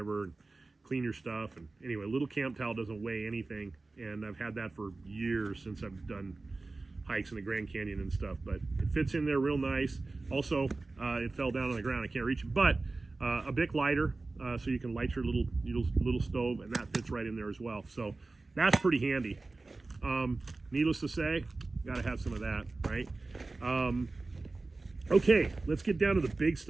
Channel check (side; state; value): left; quieter; 3.4 dB